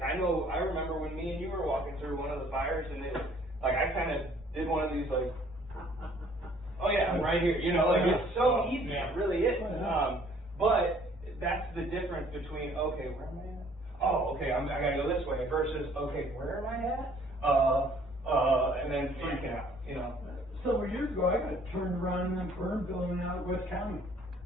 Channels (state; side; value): normal; both; correlation 0.58